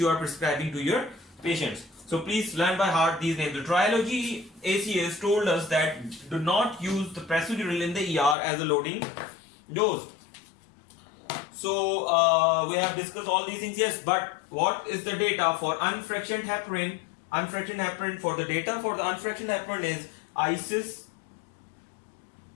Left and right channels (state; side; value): drops out; right; at 8.3 s